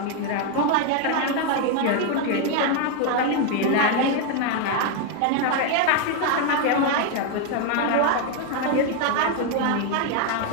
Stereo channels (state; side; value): different; both; correlation 0.01